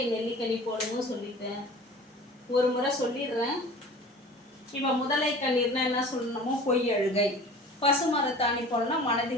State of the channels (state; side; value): normal; both; correlation 0.42